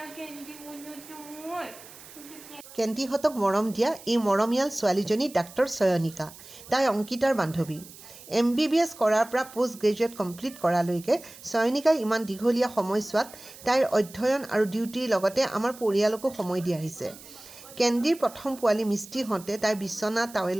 কেন্দি মনটো মোৰ কেন্দিহঁতক মৰম দিয়া এই মৰমীয়াল ছোৱালীজনী ডাক্তৰ চয়নিকা তাই অংকিতাৰ বান্ধৱী MBBS কৰাৰ পৰা পোষ্ট গ্ৰেজুৱেট কমপ্লিট কৰালৈকে চয়নিকাই ইমান দীঘলীয়া সময়ছোৱাত তাইৰ অধ্যয়ন আৰু ডিউটিৰ লগতে আমাৰ পৰিয়ালকো সময় দি আহিছে কেন্দিৰ প্ৰথম পোৱালি মিষ্টি হওঁতে তাইৰ বিচনা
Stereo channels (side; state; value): right; noise; hiss, 18 dB below the sound